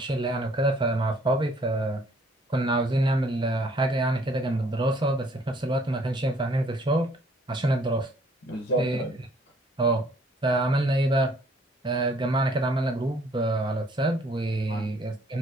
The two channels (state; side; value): normal; both; correlation 0.61